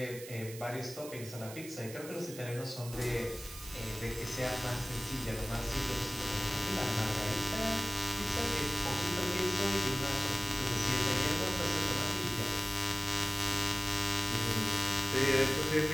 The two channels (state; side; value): noise; right; hiss, 13 dB below the sound